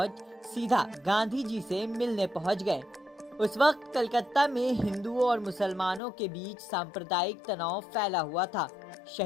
सीधा गांधी जी से मिलने पहुंच गए। उस वक्त कलकत्ता में हिंदुओं और मुसलमानों के बीच सांप्रदायिक तनाव फैला हुआ था।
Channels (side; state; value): right; drops out; at 6.0 s